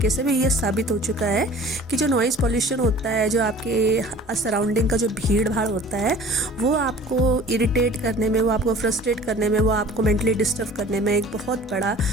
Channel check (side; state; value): both; normal; correlation 0.46